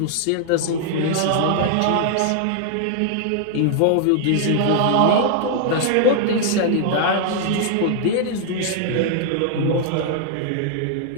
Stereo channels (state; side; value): different; both; correlation 0.00